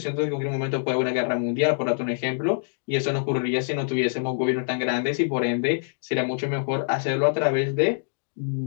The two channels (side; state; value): right; silent; digital silence